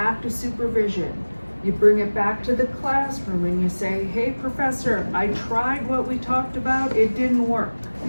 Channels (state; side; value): inverted; both; correlation -1.00